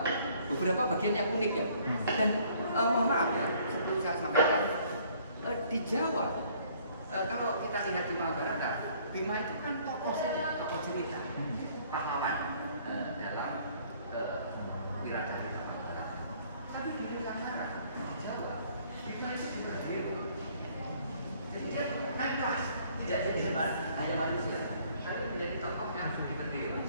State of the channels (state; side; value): inverted; both; correlation -0.60